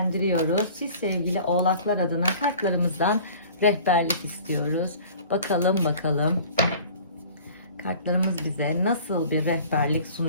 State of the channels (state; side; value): inverted; both; correlation -0.46